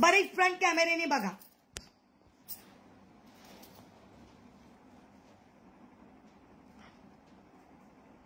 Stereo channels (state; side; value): identical; both; correlation 1.00